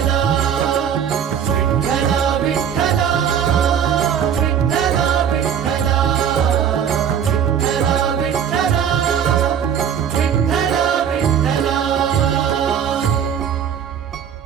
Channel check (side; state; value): left; quieter; 8.4 dB